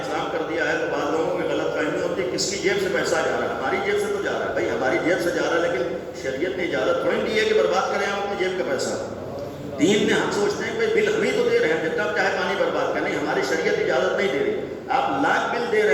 کر دیا ہے تو بعض لوگوں کی غلط فہمی ہوتی ہے کس کی جیب سے پیسہ جا رہا ہے. ہماری جیب سے تو جا رہا ہے بھائی، ہماری جیب سے جا رہا ہے، لیکن شریعت نے اجازت تھوڑی دی ہے کہ برباد کریں ہم اپنی جیب کا پیسہ. دین میں ہم سوچتے ہیں کہ بل ہم ہی تو دے رہے ہیں، جتنا چاہے پانی برباد کریں، ہماری شریعت اجازت نہیں دے رہی. آپ لاکھ بل دے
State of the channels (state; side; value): identical; both; correlation 1.00